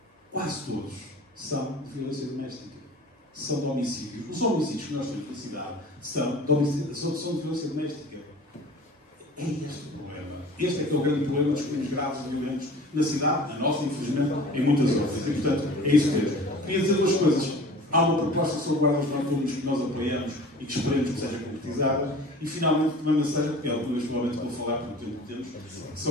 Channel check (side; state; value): both; normal; correlation 0.43